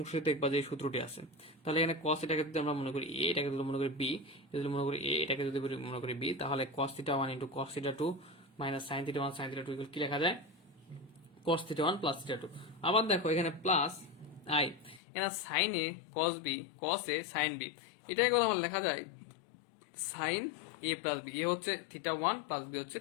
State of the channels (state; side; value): drops out; right; at 15.0 s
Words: দেখবা যে সূত্রটি আছে। তাহলে এখানে cos এটাকে যদি আমরা মনে করি a, এটাকে যদি মনে করি b, যদি মনে করি a, এটাকে যদি মনে করি b, তাহলে cos theta 1 into cos theta 2 minus sine theta 1 sine theta 2 কি লেখা যায়, cos থিটা 1 প্লাস থিটা 2। আবার দেখো এখানে প্লাস i, এখানে sine a cos b cos a sine b, এটাই কথা লেখা যায় sine a plus b। A হচ্ছে থিটা 1 প্লাস b হচ্ছে